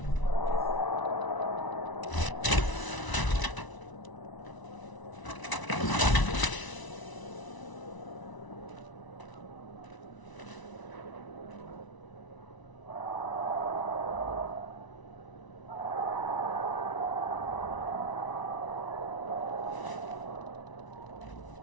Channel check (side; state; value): right; late; 1.0 ms